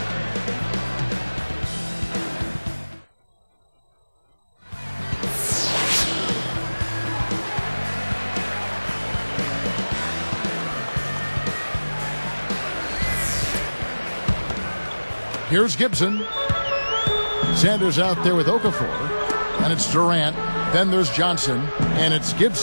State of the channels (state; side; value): inverted; both; correlation -1.00